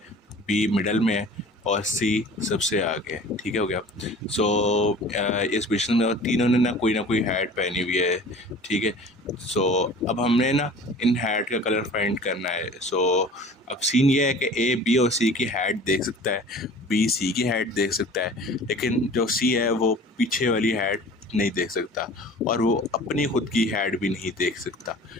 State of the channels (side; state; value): both; normal; correlation 0.44